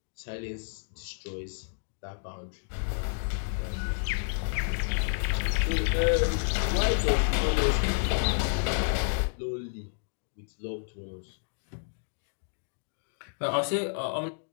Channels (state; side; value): silent; right; digital silence